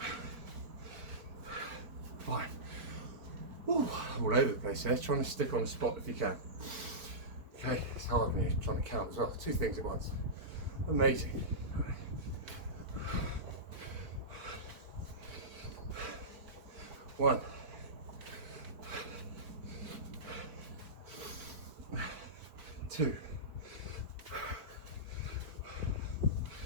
5. Ooh, all over the place there. Trying to stick on a spot if you can. Okay, it's hard when you're trying to count as well. 2 things at once. Amazing. One. 2.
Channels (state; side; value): late; left; 4.5 ms